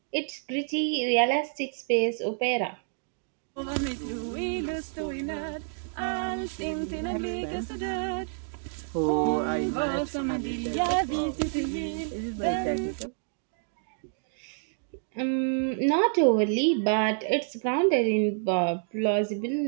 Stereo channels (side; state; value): left; silent; digital silence